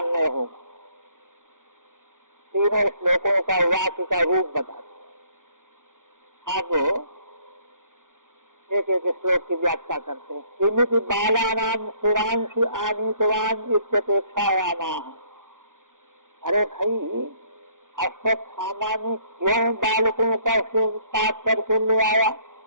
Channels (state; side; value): late; left; 0.88 ms